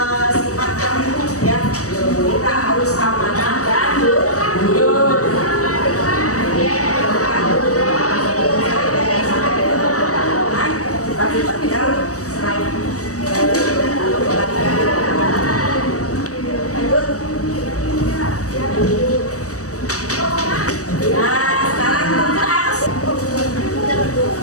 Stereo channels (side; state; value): right; late; 0.66 ms